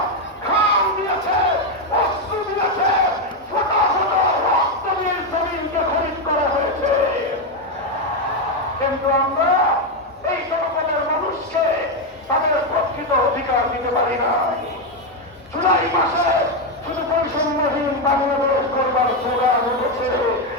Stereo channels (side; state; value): both; normal; correlation 0.06